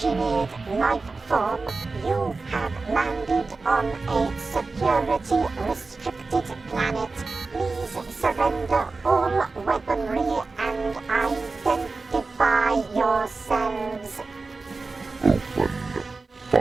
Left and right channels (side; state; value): left; quieter; 3.9 dB